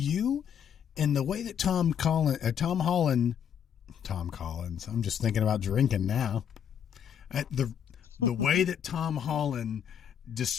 And the way that Tom Collins, I'm just thinking about drinking now. The way that Tom Holland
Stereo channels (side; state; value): right; quieter; 8.5 dB